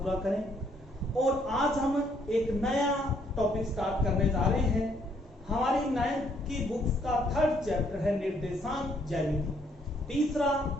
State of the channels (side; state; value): both; normal; correlation 0.69